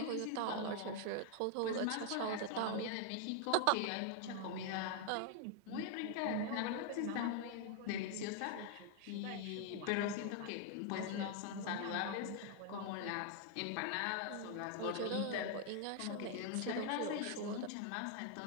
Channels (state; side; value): different; both; correlation 0.00